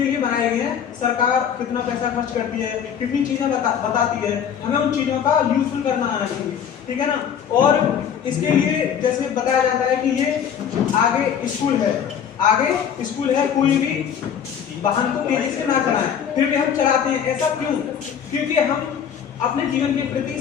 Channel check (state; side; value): quieter; right; 8.3 dB